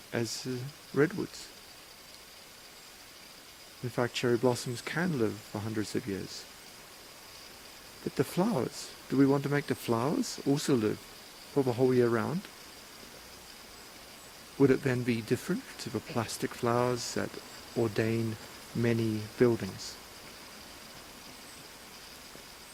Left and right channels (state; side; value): identical; both; correlation 1.00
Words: as redwoods. In fact, cherry blossoms can live for hundreds of years. But the flowers, do we want to make the flowers also live for the whole year round? Would it then be different to the plastic flowers that ordain many buildings?